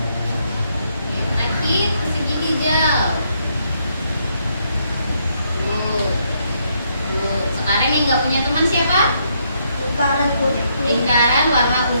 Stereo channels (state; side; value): inverted; both; correlation -0.74